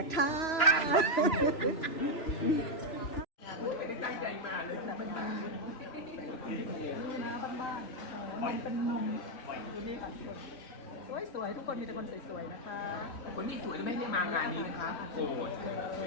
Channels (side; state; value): right; late; 3.0 ms